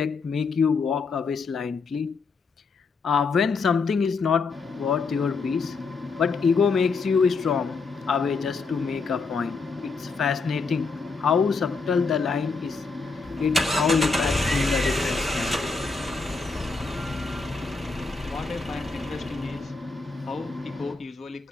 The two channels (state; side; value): quieter; right; 4.5 dB